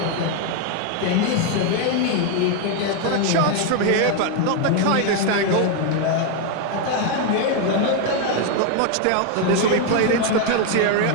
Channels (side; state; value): both; different; correlation 0.01